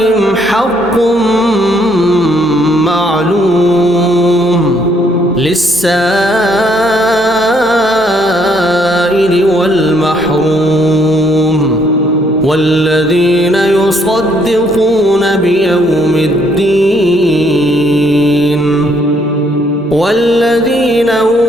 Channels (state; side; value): normal; both; correlation 0.68